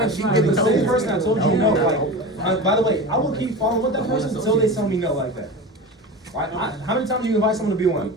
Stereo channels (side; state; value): both; normal; correlation 0.28